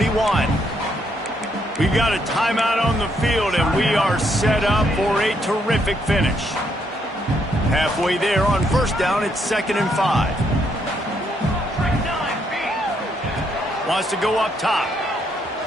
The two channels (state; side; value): normal; both; correlation 0.74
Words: We've got a timeout on the field, and we are set up for a terrific finish. Halfway there on first down, it's 2nd and 5. Wants to go up top.